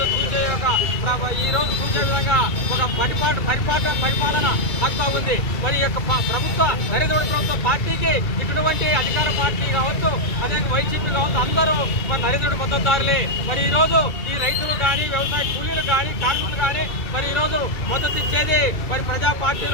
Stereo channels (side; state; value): right; late; 2.3 ms